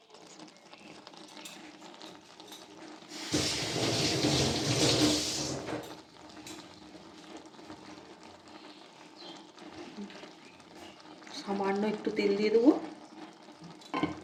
সামান্য একটু তেল দিয়ে দেবো।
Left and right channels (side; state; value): both; identical; correlation 1.00